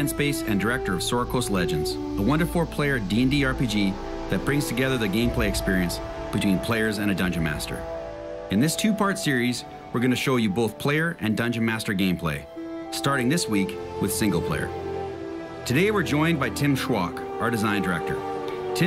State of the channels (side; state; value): both; identical; correlation 1.00